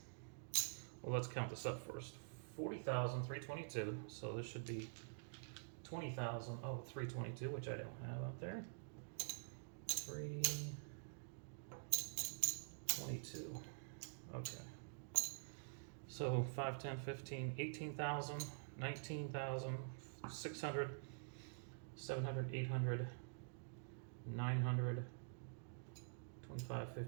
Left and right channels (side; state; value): left; silent; digital silence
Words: let's count this up first. 40,322, so this should be 20,000. Oh, 322, which I don't have out there. 322. Okay. So 5, 10, 15, 18,000, 19,000, 600, 700, 800, 900, 25,